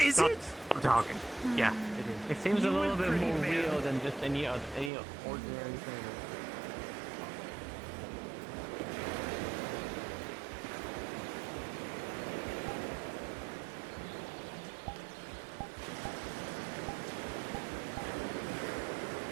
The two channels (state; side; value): drops out; left; at 4.9 s